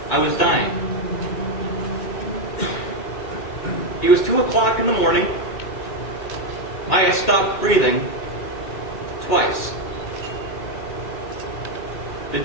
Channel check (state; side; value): late; right; 2.2 ms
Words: I was dying. It was 2 o'clock in the morning. I had stopped breathing twice. The